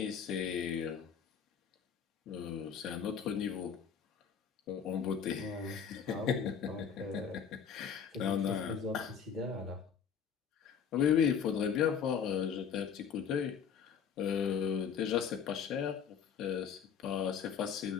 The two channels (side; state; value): right; quieter; 7.3 dB